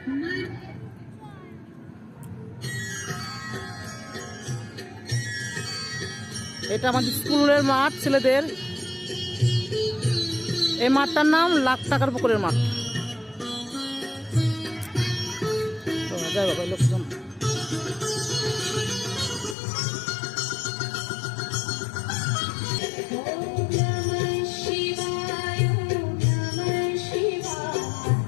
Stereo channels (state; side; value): drops out; right; at 19.6 s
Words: এটা আমাদের স্কুলের মাঠ, ছেলেদের। এই মাঠটার নাম লাখ টাকার পুকুরের মাঠ। যাই বাবা, লোকজন